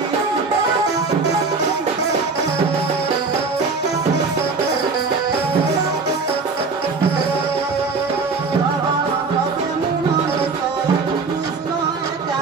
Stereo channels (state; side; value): quieter; left; 4.3 dB